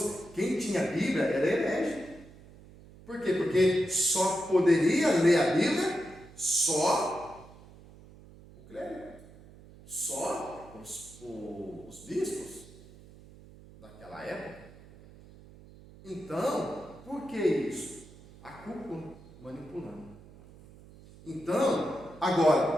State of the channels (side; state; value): right; noise; hum, 21 dB below the sound